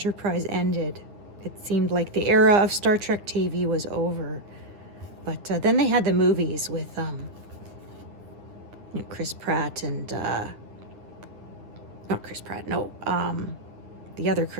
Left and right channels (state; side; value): late; left; 9.8 ms